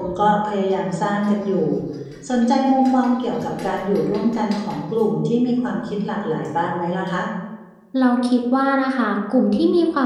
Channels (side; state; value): both; identical; correlation 1.00